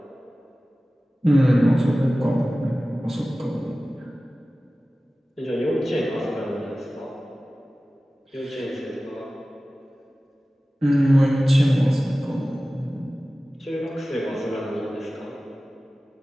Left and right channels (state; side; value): normal; both; correlation 0.96